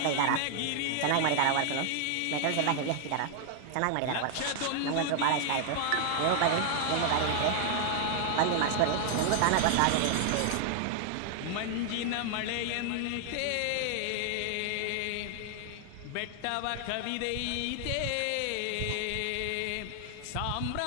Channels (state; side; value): different; both; correlation 0.00